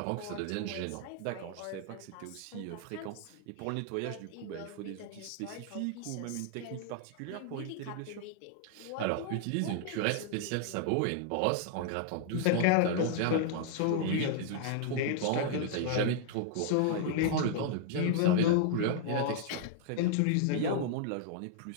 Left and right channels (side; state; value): both; different; correlation 0.00